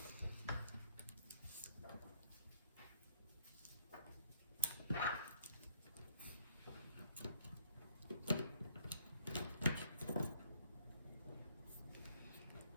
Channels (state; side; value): inverted; both; correlation -0.66